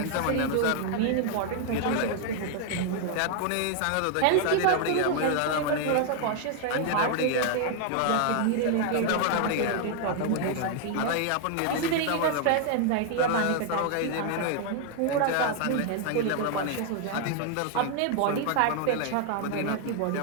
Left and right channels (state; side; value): different; both; correlation 0.00